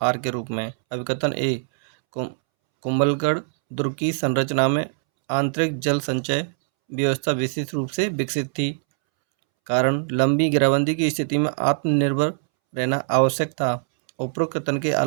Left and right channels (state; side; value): silent; left; 64 dB below the other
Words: के रूप में। अभिकथन ए, कुंभलगढ़ दुर्ग की संरचना में आंतरिक जल संचय व्यवस्था विशेष रूप से विकसित थी। कारण लंबी घेराबंदी की स्थिति में आत्मनिर्भर रहना आवश्यक था। उपरोक्त कथन के